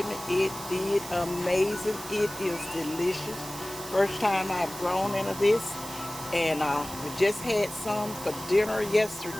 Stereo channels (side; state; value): right; noise; hiss, 12 dB below the sound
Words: me. It did amazing. It is delicious. First time I've grown into this, and we just had some for dinner